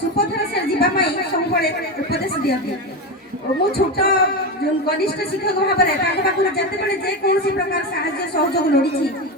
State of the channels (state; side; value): normal; both; correlation 0.16